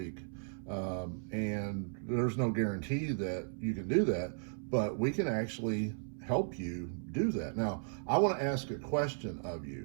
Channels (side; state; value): left; silent; 54 dB below the other